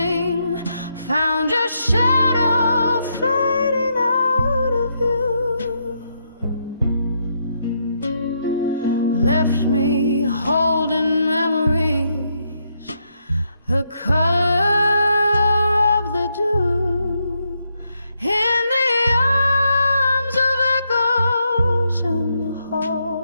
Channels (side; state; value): both; inverted; correlation -0.78